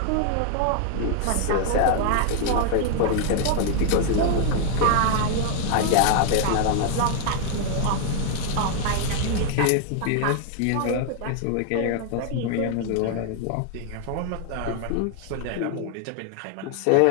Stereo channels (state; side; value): different; both; correlation 0.00